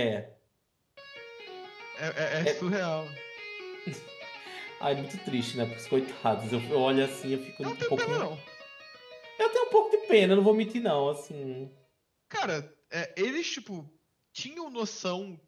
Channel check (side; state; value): both; identical; correlation 1.00